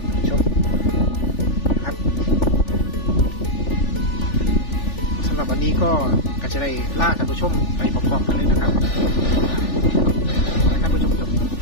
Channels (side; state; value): right; late; 3.4 ms